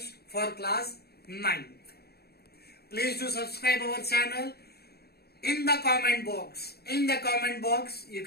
for class 9th. Please do subscribe our channel. In the comment box, you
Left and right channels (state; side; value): late; right; 0.46 ms